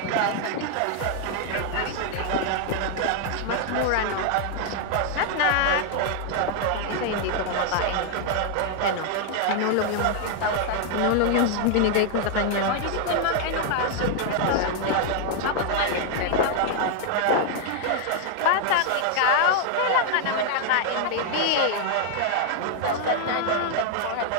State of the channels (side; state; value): both; different; correlation 0.00